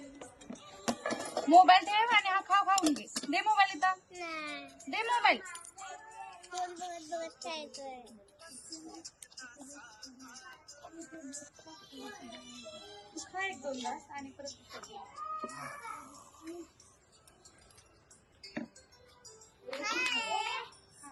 मोबाईल ठेव आणि हा खाऊन घे. दे मोबाईल इथं. दे मोबाईल. खा एक दोन तास आणि परत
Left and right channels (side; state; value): both; identical; correlation 1.00